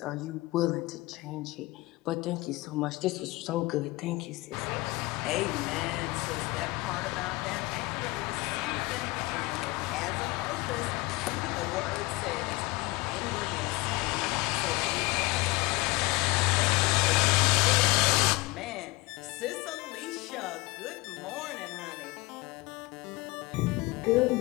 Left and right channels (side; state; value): right; quieter; 22.6 dB